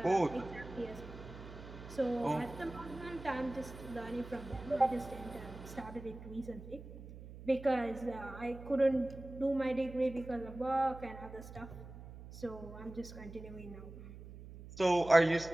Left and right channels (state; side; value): noise; right; hum, 14 dB below the sound